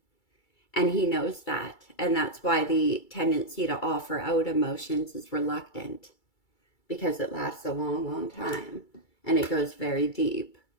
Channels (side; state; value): right; late; 2.3 ms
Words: And he knows that. And that's why the tendency to offer out emotions is reluctant. Because it lasts a long, long time. And it goes very deep.